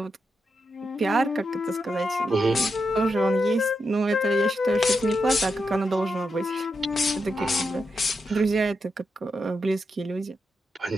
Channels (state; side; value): normal; both; correlation 0.85